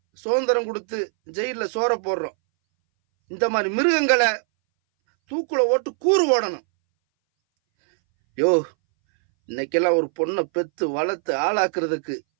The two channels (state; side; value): silent; left; 61 dB below the other